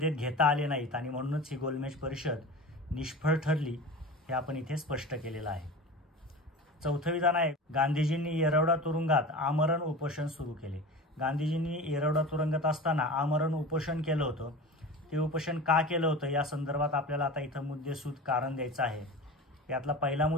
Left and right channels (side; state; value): both; normal; correlation 0.32